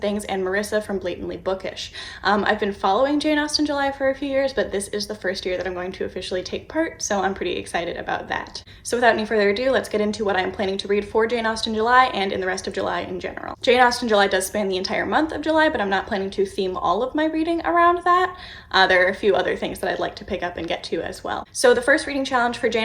and Marissa from Blatantly Bookish. I've been following Jane Austen July for a few years, but this is the first year that I'm going to officially take part, so I'm pretty excited about that. So without any further ado, let's get into what I'm planning to read for Jane Austen July and in the rest of July in general. Jane Austen July does span the entire month of July, but I'm not planning to theme all of my reading around that. There are a few other things that I'd like to pick up and get to as well. So the first reading challenge for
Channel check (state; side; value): identical; both; correlation 1.00